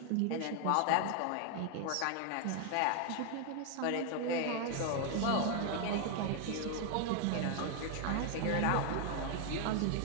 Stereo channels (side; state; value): both; different; correlation 0.00